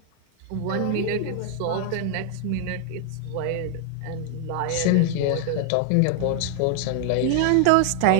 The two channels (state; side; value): different; both; correlation 0.00